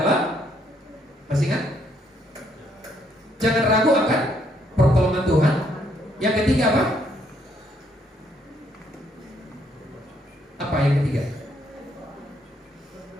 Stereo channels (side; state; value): both; normal; correlation 0.71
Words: masih ingat? Jangan ragu akan pertolongan Tuhan. Yang ketiga apa? Apa yang ketiga?